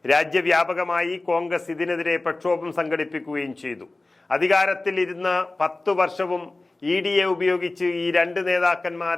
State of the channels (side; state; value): right; quieter; 3.0 dB